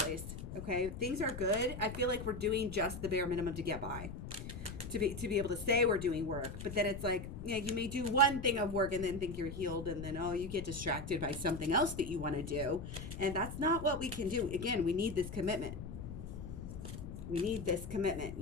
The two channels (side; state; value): left; noise; rumble, 8 dB below the sound